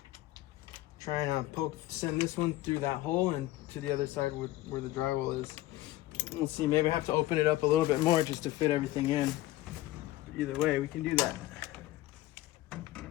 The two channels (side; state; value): right; quieter; 16.4 dB